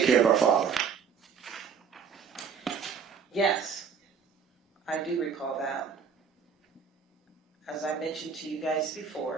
care of our father? Yes, I do recall that. As I mentioned to you guys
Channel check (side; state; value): left; quieter; 6.5 dB